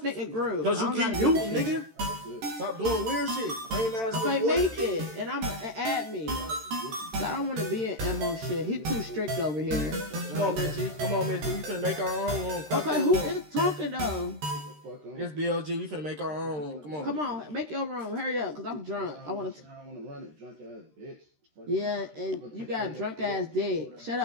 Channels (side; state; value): left; late; 13 ms